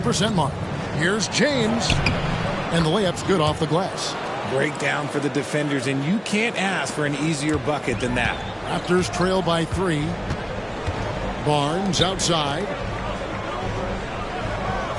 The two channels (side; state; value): both; identical; correlation 1.00